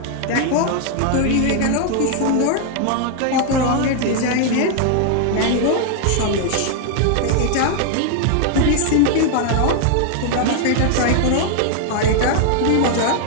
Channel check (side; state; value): both; different; correlation 0.00